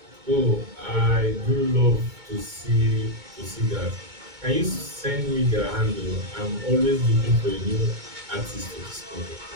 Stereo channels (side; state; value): left; late; 2.2 ms